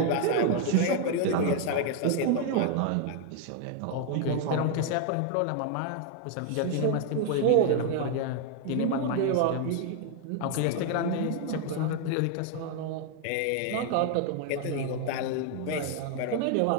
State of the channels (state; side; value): different; both; correlation 0.01